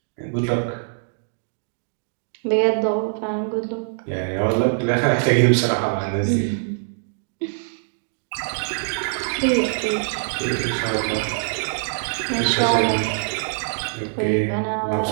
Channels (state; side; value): silent; left; digital silence